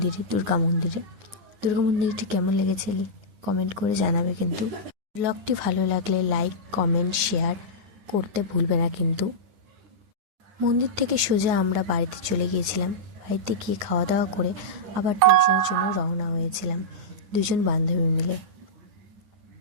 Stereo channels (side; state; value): left; late; 9.5 ms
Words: দুর্গা মন্দিরটি কেমন লেগেছে কমেন্ট করে জানাবে। কিন্তু ভ্লগটি ভালো লাগলে লাইক, কমেন্ট, শেয়ার করতে ভুলবে না কিন্তু। মন্দির থেকে সোজা আমরা বাড়িতে চলে গিয়েছিলাম। বাড়িতে গিয়ে খাওয়া দাওয়া করে আবার টিউশনের জন্য রওনা হয়েছিলাম দুজন বান্ধবী মিলে।